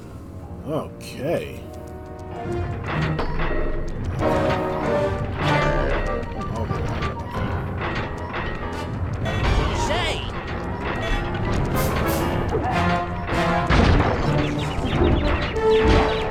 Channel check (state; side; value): identical; both; correlation 1.00